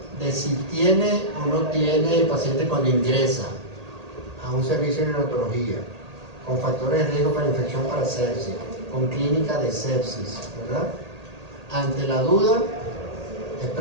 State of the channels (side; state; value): left; late; 1.8 ms